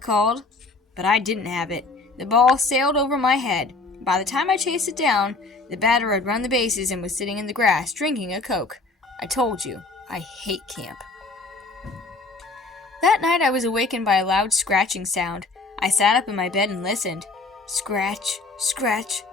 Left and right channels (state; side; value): quieter; right; 3.6 dB